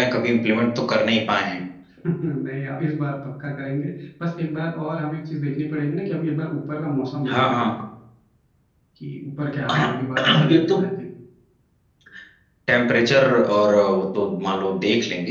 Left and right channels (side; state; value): both; identical; correlation 1.00